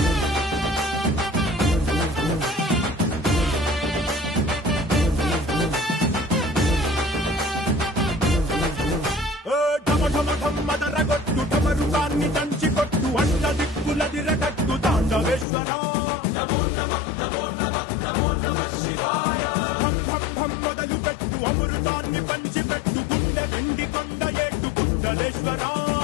మదరగొట్టు టమరుకాన్ని దంచి కొట్టు అండ దిక్కులదిరగట్టు తాండవేశ్వర నమో నమః నమో నమః నమో నమః శివాయ భం భం భం మొదలు పెట్టు అమృతాన్ని పంచి పెట్టు గుండె వెండి కొండ ఏట్టు గుండలేశ్వర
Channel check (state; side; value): drops out; right; at 15.5 s